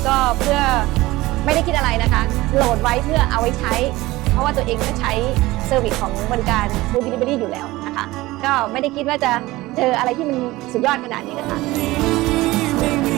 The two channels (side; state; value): left; quieter; 19.0 dB